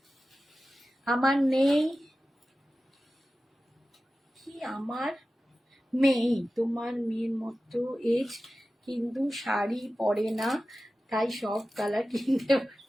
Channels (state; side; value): normal; both; correlation 0.94